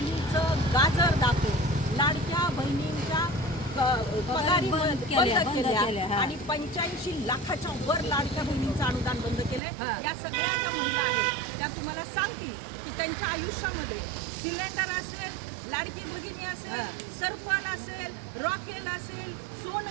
गाजर दाखवून लाडक्या बहिणींच्या पगारी बंद केल्या आणि 85 लाखाच्या वर लाडक्या बहिणींचं अनुदान बंद केलंय। या सगळ्या ज्या महिला आहेत त्या तुम्हाला सांगतील की त्यांच्या आयुष्यामध्ये सिलेंडर असेल, लाडकी भगिनी असेल, सरपण असेल, रॉकेल असेल,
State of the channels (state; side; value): drops out; left; at 9.6 s